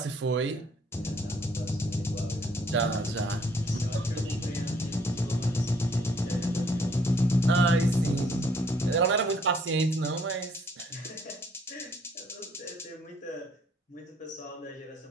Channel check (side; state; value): both; normal; correlation 0.64